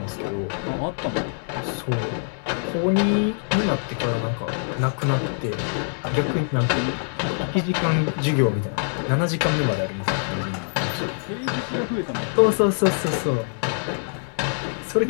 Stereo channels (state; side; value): silent; right; 62 dB below the other